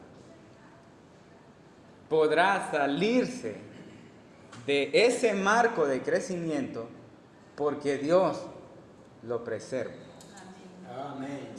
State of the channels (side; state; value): both; identical; correlation 1.00